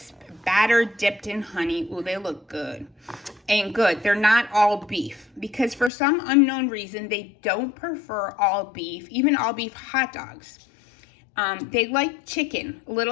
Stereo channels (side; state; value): right; drops out; at 5.9 s